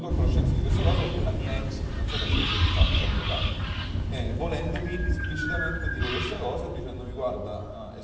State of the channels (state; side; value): identical; both; correlation 1.00